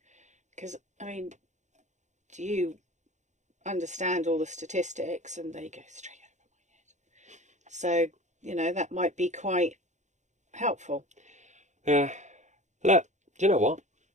Because, do you understand all the statistics and they go straight over my head? So you know, that might be quite helpful. Yeah. Look, do you know what?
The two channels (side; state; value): left; late; 0.34 ms